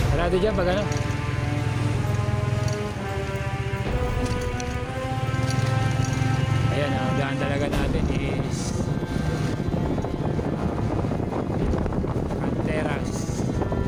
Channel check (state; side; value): identical; both; correlation 1.00